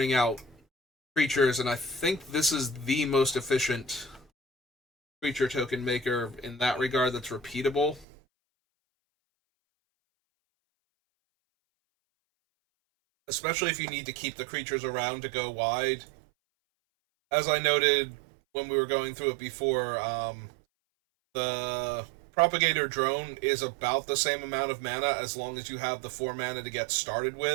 out creatures, and I think this is the most efficient creature token maker in that regard that's repeatable. Especially if you need to keep the creatures around to go wide. As I noted when we were going through it before, the Propagator Drone is about the same amount of mana as long as you have the 4 mana to get started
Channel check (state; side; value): drops out; left; at 8.1 s